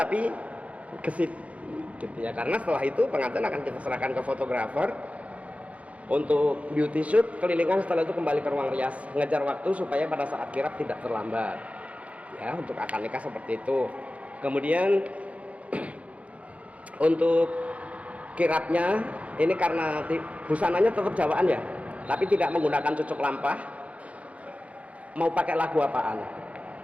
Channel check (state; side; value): late; left; 0.065 ms